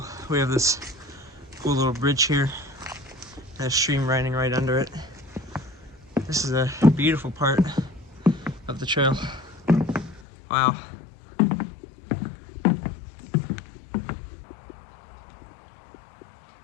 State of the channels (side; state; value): right; drops out; at 10.2 s